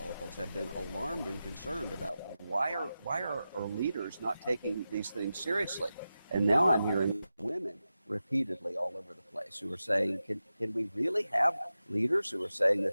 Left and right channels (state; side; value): inverted; both; correlation -0.92